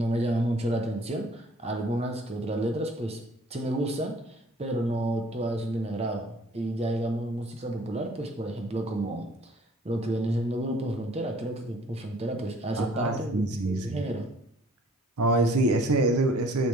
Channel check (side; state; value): both; normal; correlation 0.54